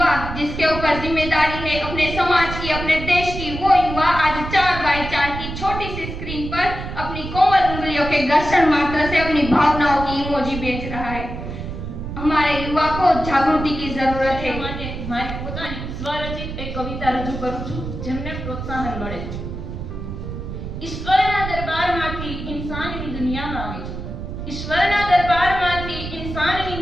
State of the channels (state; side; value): noise; right; rumble, 7 dB below the sound